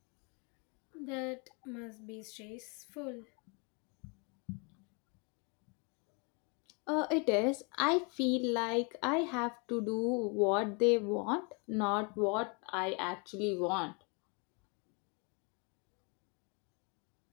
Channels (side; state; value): right; quieter; 33.8 dB